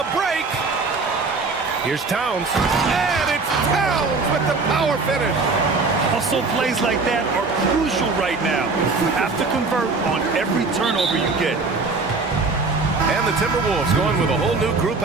break. Here's Towns. And it's Towns with the power finish. Hustle plays like that are crucial right now. You have to convert on every turnover you get. And the Timberwolves going with a whole new group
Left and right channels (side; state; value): left; quieter; 4.0 dB